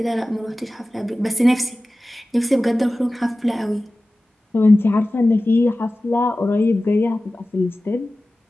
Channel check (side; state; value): both; normal; correlation 0.96